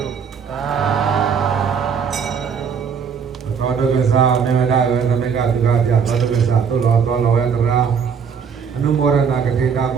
ုသာဓု သောတကသာမေမဒါဝေသမကသုခပြသောတကသာသုလောသောလောယတရာအနုမောရဏကတိတာဘ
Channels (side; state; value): left; quieter; 6.6 dB